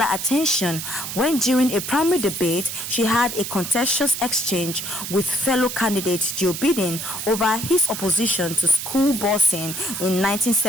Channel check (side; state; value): right; noise; hiss, 6 dB below the sound